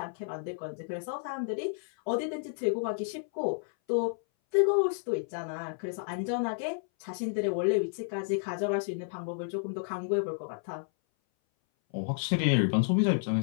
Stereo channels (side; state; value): right; silent; 57 dB below the other